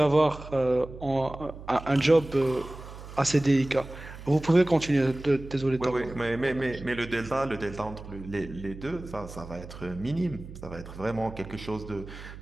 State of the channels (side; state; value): right; noise; hum, 14 dB below the sound